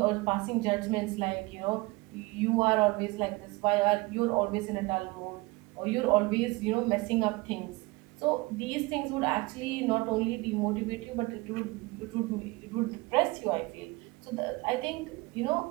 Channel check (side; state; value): left; quieter; 23.6 dB